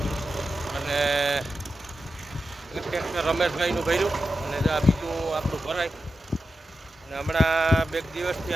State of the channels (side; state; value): both; normal; correlation 0.90